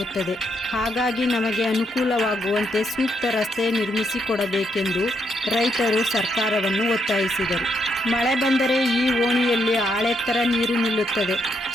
ಹಾಗಾಗಿ ನಮಗೆ ಅನುಕೂಲವಾಗುವಂತೆ ಸೂಕ್ತ ರಸ್ತೆ ನಿರ್ಮಿಸಿಕೊಡಬೇಕೆಂದು ರೈತರು ಸರ್ಕಾರವನ್ನು ಒತ್ತಾಯಿಸಿದರು. ಮಳೆ ಬಂದರೆ ಈ ಓಣಿಯಲ್ಲಿ ಆಳೆತ್ತರ ನೀರು ನಿಲ್ಲುತ್ತದೆ.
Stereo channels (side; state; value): both; normal; correlation 0.77